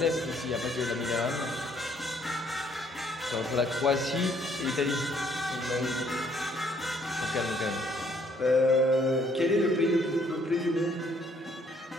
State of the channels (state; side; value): normal; both; correlation 0.65